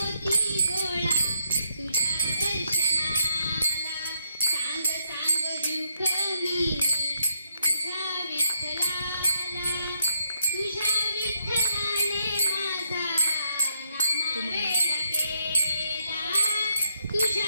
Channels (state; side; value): inverted; both; correlation -0.75